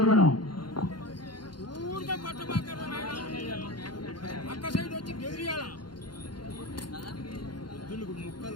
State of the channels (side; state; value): right; late; 0.71 ms